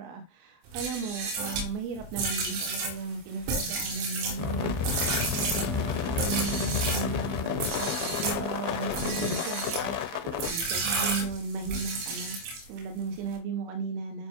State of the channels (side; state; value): left; late; 25 ms